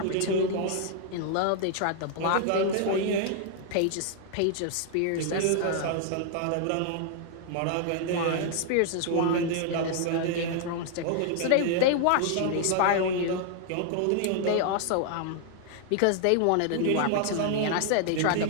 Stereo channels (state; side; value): different; both; correlation 0.00